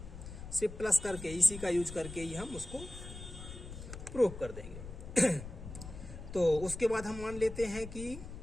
सिर्फ प्लस करके, इसी का यूज करके ही हम उसको प्रूव कर देंगे। तो उसके बाद हम मान लेते हैं कि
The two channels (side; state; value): left; noise; rumble, 11 dB below the sound